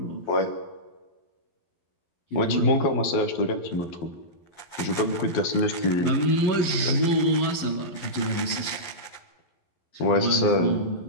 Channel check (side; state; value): right; late; 12 ms